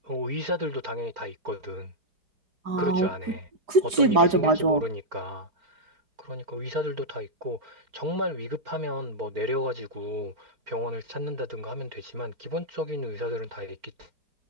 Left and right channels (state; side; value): late; left; 4.9 ms